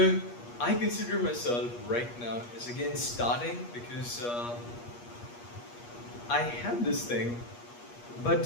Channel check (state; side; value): late; right; 8.4 ms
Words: I consider myself right now as again starting because I had this thing,